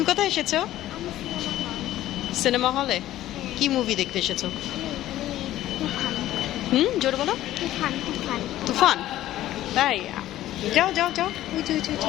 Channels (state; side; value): quieter; right; 14.0 dB